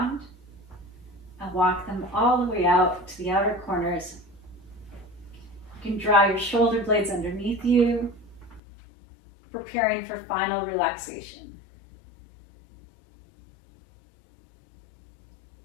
and walk them all the way out to the outer corners. You can draw your shoulder blades underneath you, preparing for final relaxation.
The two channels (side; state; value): right; drops out; at 8.6 s